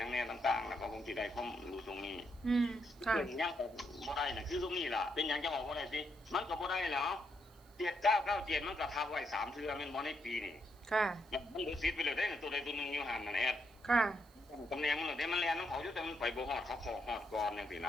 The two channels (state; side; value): noise; right; hiss, 28 dB below the sound